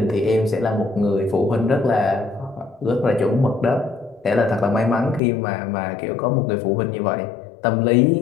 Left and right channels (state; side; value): drops out; right; at 5.2 s